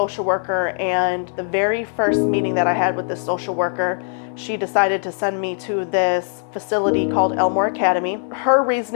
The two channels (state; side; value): silent; right; 65 dB below the other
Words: worker, and the very first meeting that I had with this social worker, she decided to send me to this facility called Elmore Academy. Her